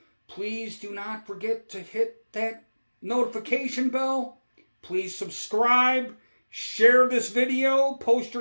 please do not forget to hit that notification bell. Please subscribe, share this video, post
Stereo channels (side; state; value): both; inverted; correlation -1.00